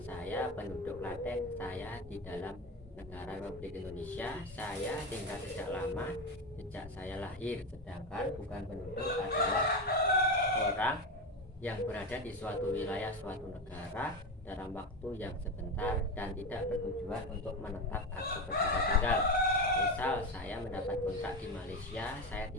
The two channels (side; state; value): both; normal; correlation 0.18